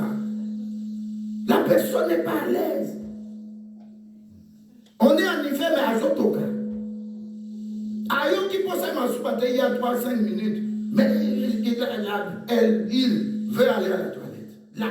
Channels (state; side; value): identical; both; correlation 1.00